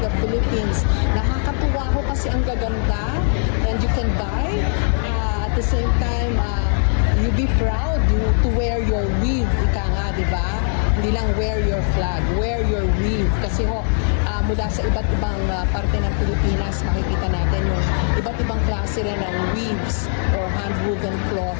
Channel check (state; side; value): silent; right; 66 dB below the other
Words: Philippines. Nakakatuwa ko kasi ang gaganda, and you can buy at the same time you be proud to wear your weave, ika nga, di ba? Hindi lang wear your flag, wear your weave. Kasi mula sa iba't ibang parte ng Pilipinas, makikita natin yung iba't ibang klase rin ng weaves or hand-woven